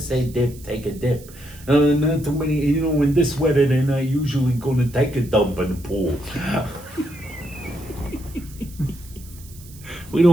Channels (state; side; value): noise; right; hiss, 21 dB below the sound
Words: dip, take a dip. Not too many, when this weather, they're not usually going to take a dump in the pool. We